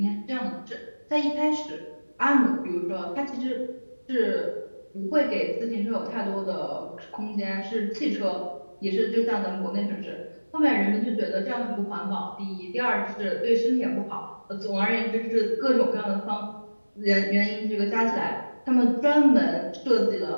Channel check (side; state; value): both; inverted; correlation -1.00